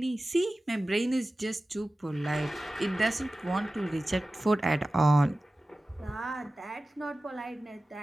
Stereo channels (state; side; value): normal; both; correlation 0.96